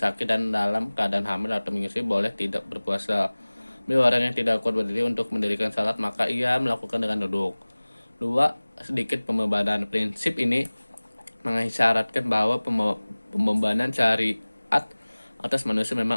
dan dalam keadaan hamil atau menyusui boleh tidak berpuasa. B, orang yang tidak kuat berdiri untuk mendirikan salat maka ia melakukan dengan duduk. 2, sedikit pembebanan. Prinsip ini mengisyaratkan bahwa pembebanan syariat atas manusia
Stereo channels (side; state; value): both; inverted; correlation -1.00